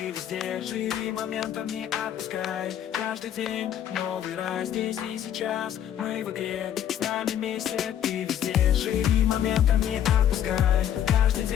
везде. Живи моментом, не отпускай. Каждый день новый рай. Здесь и сейчас мы в игре. С нами вместе, ты везде. Живи моментом, не отпускай. Каждый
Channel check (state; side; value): quieter; right; 10.2 dB